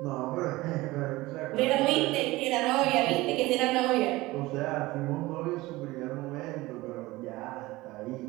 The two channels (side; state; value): left; quieter; 19.7 dB